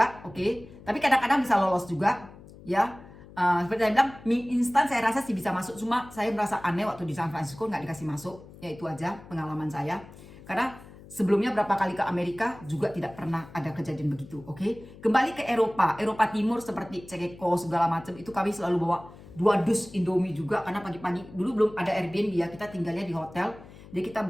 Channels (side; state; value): left; noise; hum, 19 dB below the sound